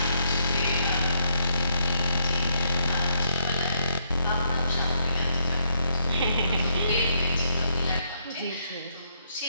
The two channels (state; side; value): inverted; both; correlation -0.74